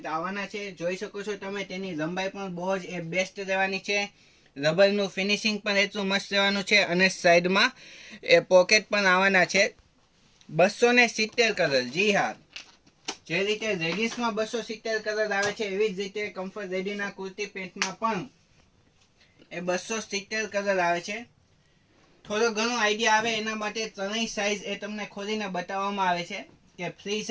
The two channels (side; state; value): both; identical; correlation 1.00